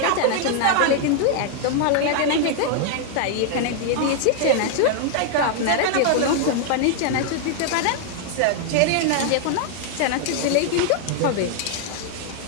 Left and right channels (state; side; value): different; both; correlation 0.00